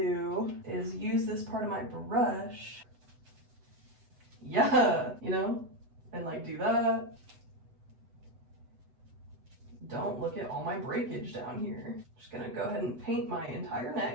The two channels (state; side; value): late; left; 8.0 ms